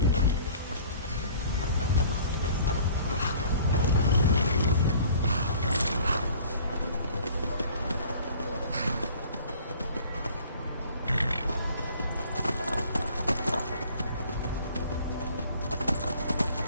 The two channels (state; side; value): inverted; both; correlation -0.50